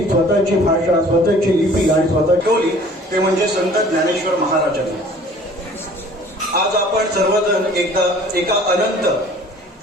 स्वतःची भाषा, स्वतःची लिपी आणि स्वतः ठेवली ते म्हणजे संत ज्ञानेश्वर महाराजांनी. आज आपण सर्वजण एका अनंत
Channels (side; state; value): both; normal; correlation 0.50